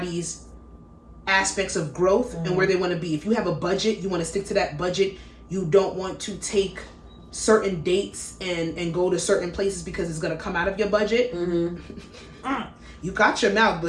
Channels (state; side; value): identical; both; correlation 1.00